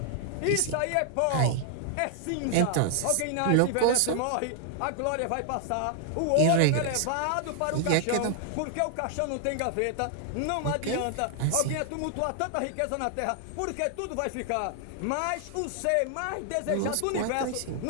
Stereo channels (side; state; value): both; different; correlation 0.00